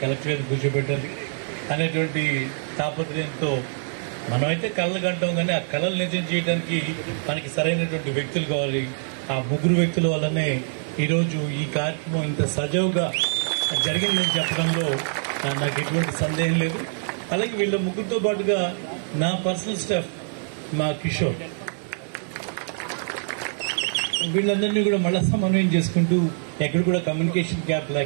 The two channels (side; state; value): left; silent; digital silence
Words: కలెక్టర్ గారిని కూర్చోబెట్టాలి అనేటువంటి తాపత్రయంతో మనమైతే కళలు కంటాం, కానీ ఆ కళలు నిజం చేయడానికి మనకి సరైనటువంటి వ్యక్తులు కావాలి. ఆ 3 వ్యక్తుల వల్లనే ఈరోజు ఈ కార్యక్రమం ఇంత సజావుగా జరిగిందని చెప్పడంలో నాకు ఎటువంటి సందేహం లేదు. అలాగే వీళ్ళ 3తో పాటుగా నా పర్సనల్ స్టాఫ్, మా కిషోర్, వీళ్ళందరినీ కూడా మళ్ళా సమన్వయం చేసుకుంటూ ఎక్కడ కూడా కమ్యూనికేషన్ గ్యాప్